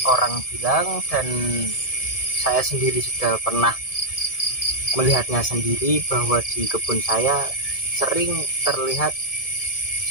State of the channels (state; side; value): late; right; 1.7 ms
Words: orang bilang, dan saya sendiri sudah pernah melihatnya sendiri, bahwa di kebun saya sering terlihat